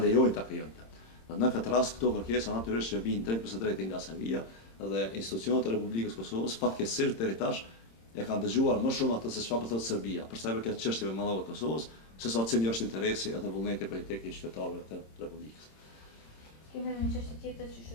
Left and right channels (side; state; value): right; late; 26 ms